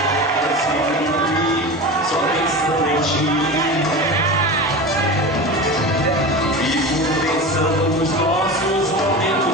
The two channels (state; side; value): normal; both; correlation 0.28